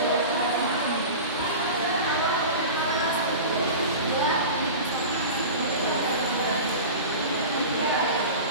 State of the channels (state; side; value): inverted; both; correlation -0.32